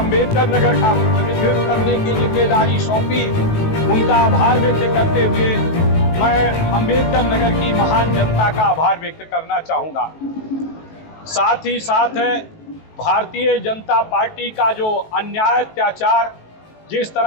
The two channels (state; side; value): late; right; 19 ms